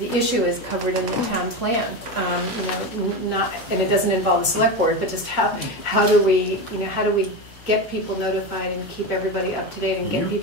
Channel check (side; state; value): both; normal; correlation 0.19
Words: issue is covered in the town plan, and it doesn't involve the select board, but just how do we get people notified and keep everybody up to date and get